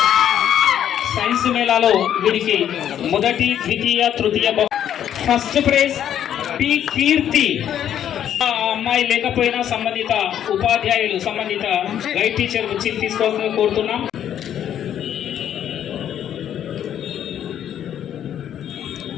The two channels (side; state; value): right; quieter; 10.1 dB